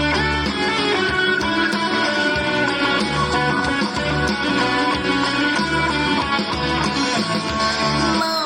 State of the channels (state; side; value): identical; both; correlation 1.00